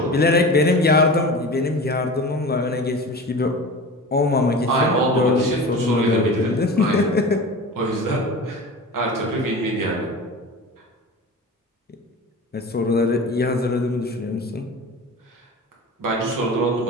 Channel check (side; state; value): both; normal; correlation 0.33